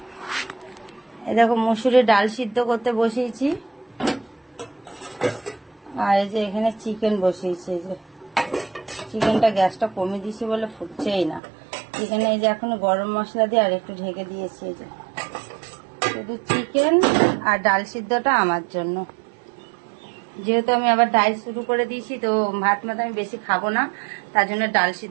এই দেখো মসুরের ডাল সিদ্ধ করতে বসিয়েছি, আর এই যে এখানে চিকেন বসিয়েছি। এই যে চিকেনটা গ্যাসটা কমে দিয়েছি বলে ফুটছেই না। চিকেনে এই যে এখন গরম মশলা দিয়ে আর একটু ঢেকে দিয়েছি। এই যে শুধু চিকেন আর ডাল সিদ্ধটা আমার জন্য, যেহেতু আমি আবার ডায়েট শুরু করে দিয়েছি তো ভাত মাত আমি বেশি খাবো না, তার জন্য ডাল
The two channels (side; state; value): left; drops out; at 11.4 s